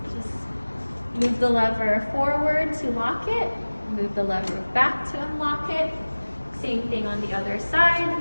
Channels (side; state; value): both; inverted; correlation -1.00